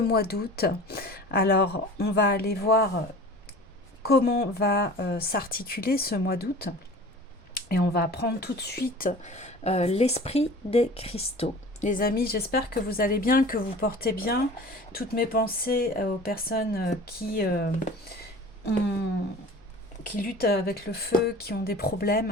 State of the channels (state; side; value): normal; both; correlation 0.41